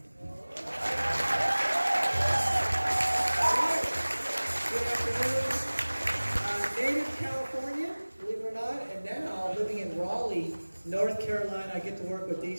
Good afternoon. Native California, believe it or not, and now living in Raleigh, North Carolina. I get to work with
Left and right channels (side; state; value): both; inverted; correlation -1.00